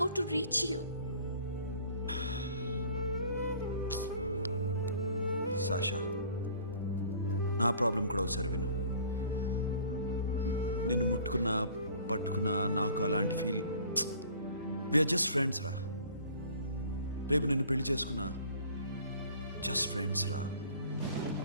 to reach you. Sasha నా ప్రాబ్లం కూడా ఒకసారి విను. నిన్ను ముట్టుకున్నా పట్టుకున్నా నాకు అలాంటి ఫీల్. వీఆర్ జస్ట్ ఫ్రెండ్స్ రా. రేపు నిన్ను పెళ్లి చేసుకున్నా జస్ట్ ఫ్రెండ్స్ రా.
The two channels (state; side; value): inverted; both; correlation -0.50